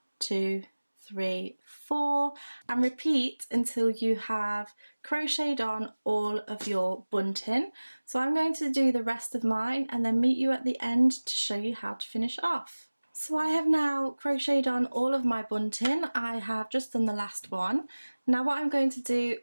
2, 3, 4, and repeat until you have crocheted on all of your bunting. So I'm going to do the rest of mine and then meet you at the end to show you how to finish off. So I have now crocheted on all of my bunting. I have just done the last one. Now what I'm going to do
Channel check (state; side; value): inverted; both; correlation -1.00